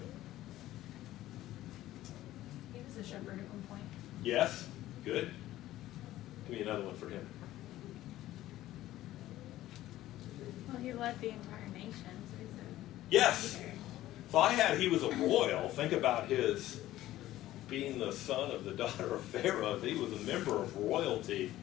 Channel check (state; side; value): quieter; right; 14.9 dB